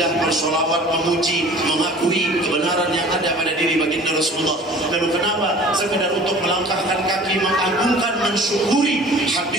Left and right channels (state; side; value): normal; both; correlation 0.46